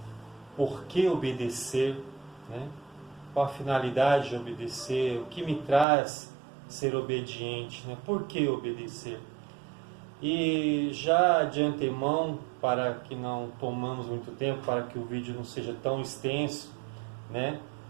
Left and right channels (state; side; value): drops out; left; at 5.9 s